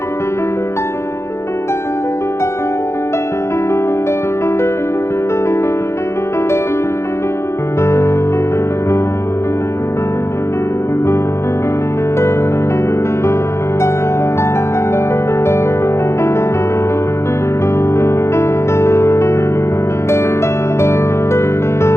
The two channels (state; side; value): late; right; 0.13 ms